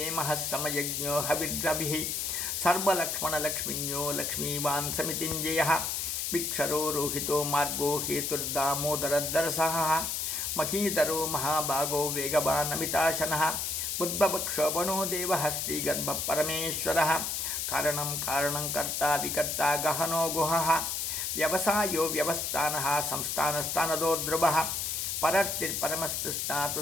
समयज्ञो हविर्रविः सर्वलक्ष्मणलक्ष्मिन्यो लक्ष्मीवान् समितिञ्जयः विक्षरो रोहितो मार्गो हेतुर्दामोदरदरसः महीधरो महाभागो वेगवान् अमिताशनः बुद्धभक्षोभणो देवः श्रीगर्भपरमेश्वरः कारणं कारणं कर्ता विकर्ता गहनो गुहः व्यवसायो व्यवस्थानः संस्थानस्थानदो ध्रुवः परर्तिर्परमस्तुष्टा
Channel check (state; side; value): noise; left; hiss, 1 dB below the sound